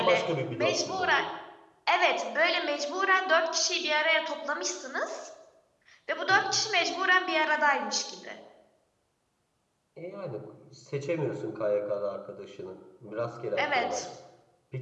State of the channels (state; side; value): identical; both; correlation 1.00